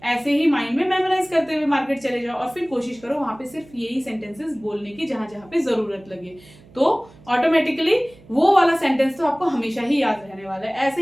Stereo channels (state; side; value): noise; right; hum, 25 dB below the sound